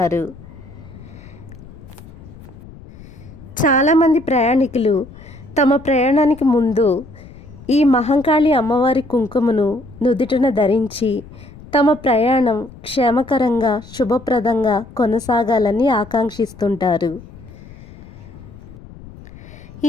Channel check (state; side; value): noise; left; rumble, 19 dB below the sound